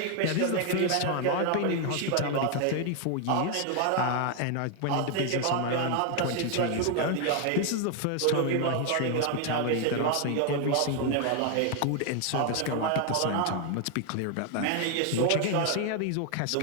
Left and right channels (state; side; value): different; both; correlation 0.00